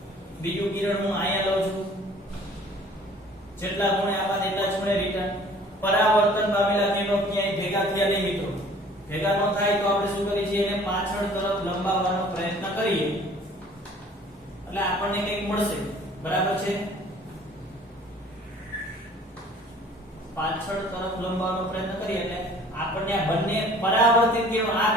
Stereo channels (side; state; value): both; normal; correlation 0.51